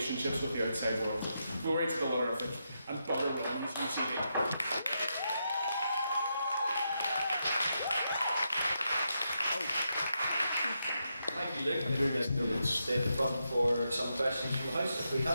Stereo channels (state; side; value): inverted; both; correlation -0.84